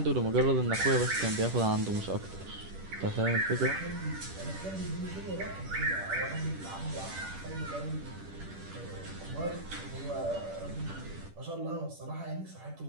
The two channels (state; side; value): late; left; 10 ms